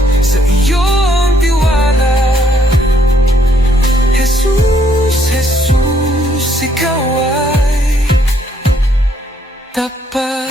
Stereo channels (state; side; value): normal; both; correlation 0.69